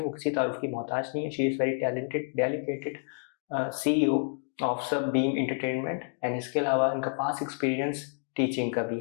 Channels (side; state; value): right; silent; 58 dB below the other